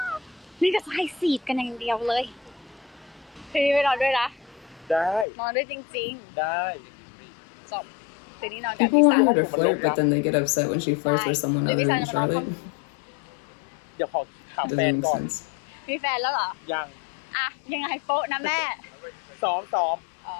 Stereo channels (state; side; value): drops out; right; at 5.2 s